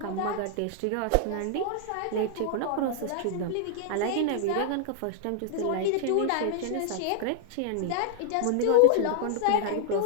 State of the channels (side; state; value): both; different; correlation -0.01